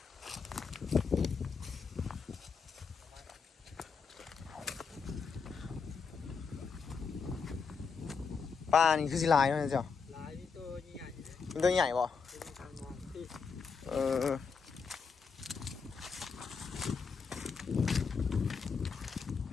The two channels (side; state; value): right; quieter; 5.5 dB